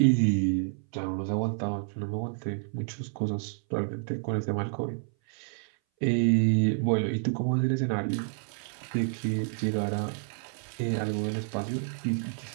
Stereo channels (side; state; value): left; silent; 58 dB below the other